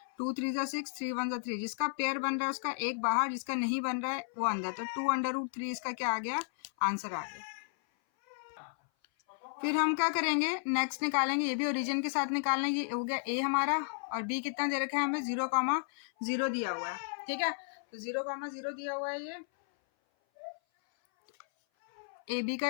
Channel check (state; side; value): silent; right; 55 dB below the other